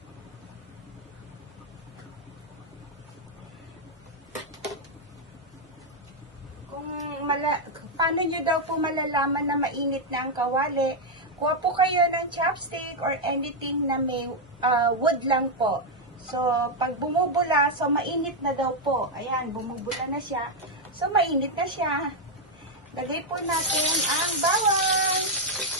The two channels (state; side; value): normal; both; correlation 0.00